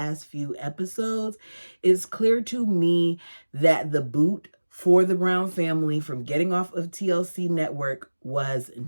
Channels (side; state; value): both; inverted; correlation -1.00